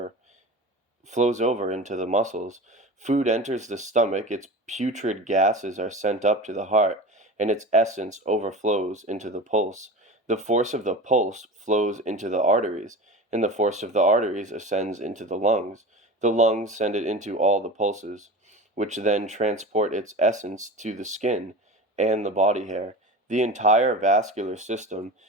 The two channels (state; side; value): normal; both; correlation 0.32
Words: into the muscles. Food enters the stomach, its putrid gases are sent up to the heart, and its essence overflows into the pulse. The force of the pulse flows into the arteries, and the force of the arteries ascends into the lungs. The lungs send it into all the pulses, which then transport its essence to the skin and the body hair. The entire vascular system